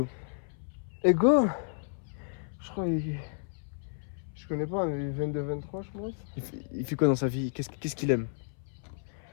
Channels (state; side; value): silent; right; 57 dB below the other